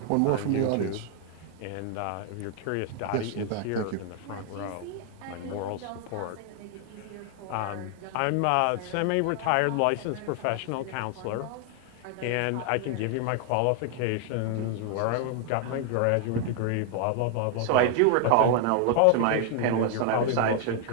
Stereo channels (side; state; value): both; different; correlation 0.00